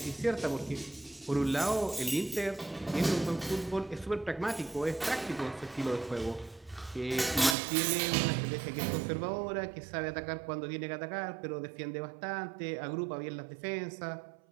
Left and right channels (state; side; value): drops out; left; at 7.6 s